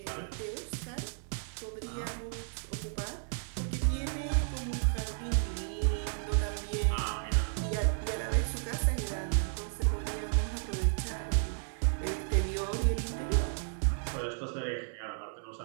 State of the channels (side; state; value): left; silent; 56 dB below the other